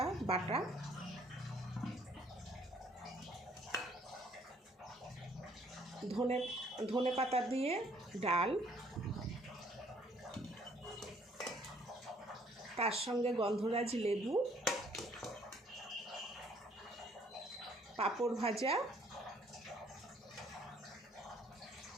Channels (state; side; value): normal; both; correlation 0.62